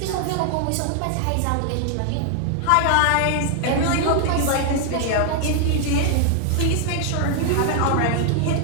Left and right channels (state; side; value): different; both; correlation 0.00